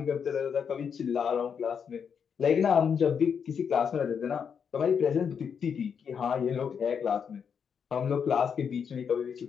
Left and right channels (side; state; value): right; quieter; 7.0 dB